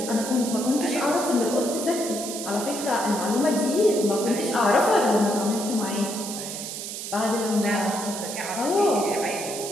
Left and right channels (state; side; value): noise; right; hiss, 7 dB below the sound